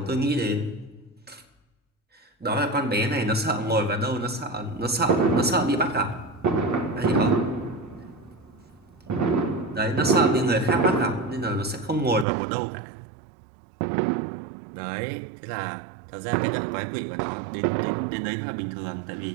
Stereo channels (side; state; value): left; drops out; at 12.2 s